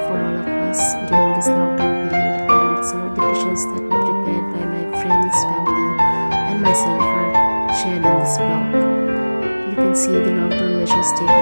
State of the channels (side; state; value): both; inverted; correlation -1.00